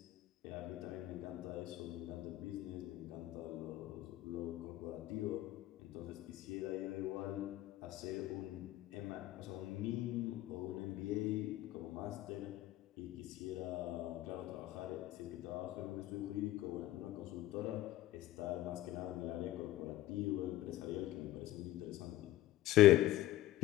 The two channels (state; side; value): quieter; right; 15.1 dB